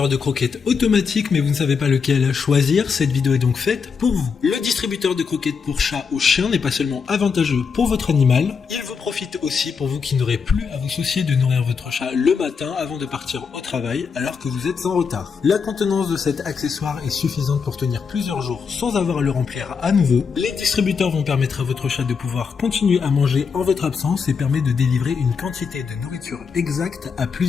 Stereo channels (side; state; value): right; quieter; 5.8 dB